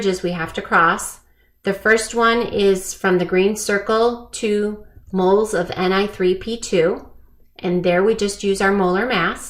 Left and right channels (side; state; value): both; identical; correlation 1.00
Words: we have to cross. The first one is from the green circle, 2 moles of Ni3P2. And there we just use our molar